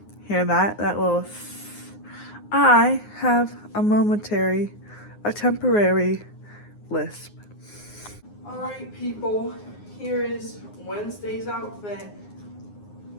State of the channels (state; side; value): late; right; 9.6 ms